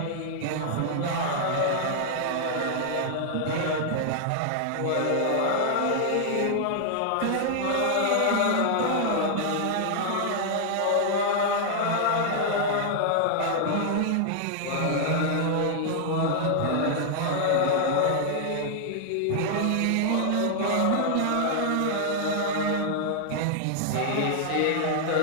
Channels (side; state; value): both; different; correlation -0.01